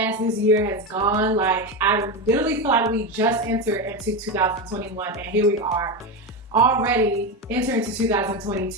this year has gone. Like, I literally feel like we just entered into 2021 and here we are already entering into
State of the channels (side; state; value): both; normal; correlation 0.15